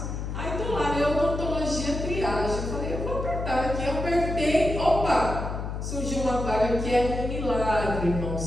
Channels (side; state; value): left; noise; hum, 5 dB below the sound